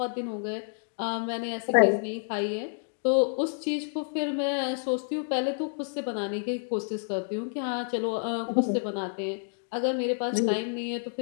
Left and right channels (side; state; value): right; silent; digital silence